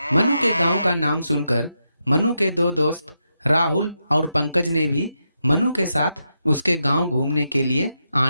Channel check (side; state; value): both; inverted; correlation -0.84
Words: मनु के गांव का नाम सुनकर मनु के दो दोस्त राहुल और पंकज ने भी मनु के साथ उसके गांव घूमने के लिए